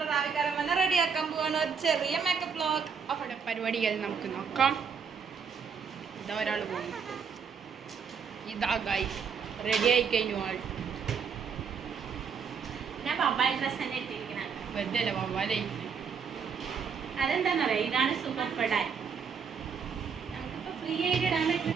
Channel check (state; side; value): quieter; left; 6.3 dB